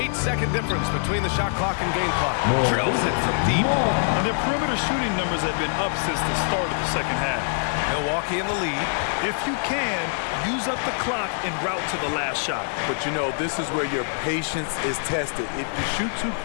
difference between the shot clock and game clock. Drills it from deep. And their perimeter shooting numbers have been up since the start of the second half. Milwaukee in the lead. If you can, use up the clock en route to the last shot. But you know, this is where your patience is tested. If you shoot too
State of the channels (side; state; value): right; silent; 62 dB below the other